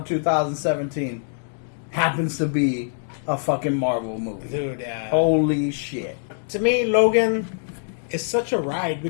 2017 happens to be a fucking Marvel movie. Dude, Holy shit. To me, Logan is such a ride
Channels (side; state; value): right; silent; 63 dB below the other